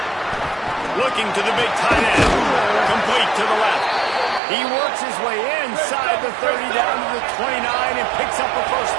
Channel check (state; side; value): drops out; left; at 4.4 s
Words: Looking to the big tight end. Complete to the left. He works his way inside the 30 down to the 29 and picks up a first